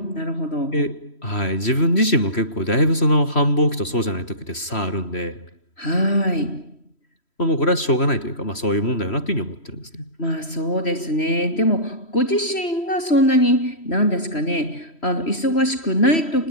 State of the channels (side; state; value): right; late; 3.1 ms